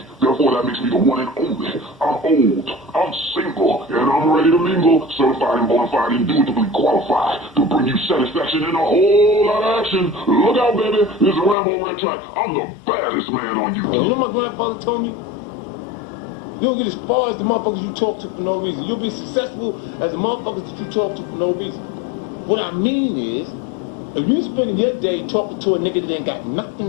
Therefore, that makes me the one and only. I'm old, I'm single, and I'm ready to mingle. Certified and bona fide, indubitably qualified to bring you satisfaction and a whole lot of action. Look out, baby. This is RAMO RETRAC. I'm the baddest man on YouTube. You know what my grandfather told me? You don't get as far as the motherfuckers you talk to for no reason. You'll be successful as the motherfuckers that you talk to for no reason. What I mean is, if you spending your day talking to a nigga that ain't got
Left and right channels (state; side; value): drops out; right; at 11.6 s